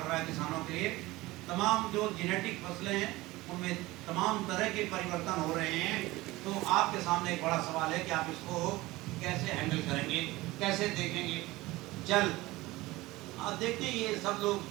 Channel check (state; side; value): quieter; left; 19.6 dB